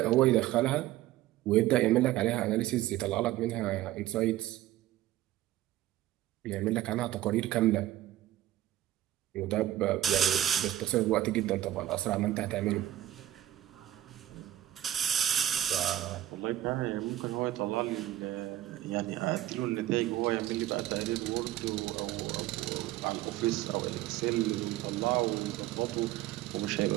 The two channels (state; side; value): quieter; left; 13.8 dB